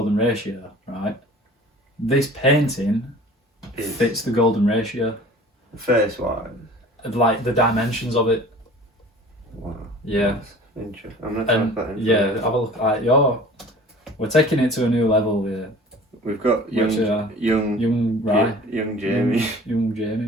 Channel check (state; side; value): normal; both; correlation 0.45